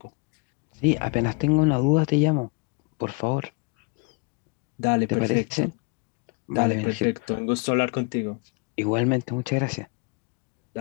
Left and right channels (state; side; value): quieter; right; 31.1 dB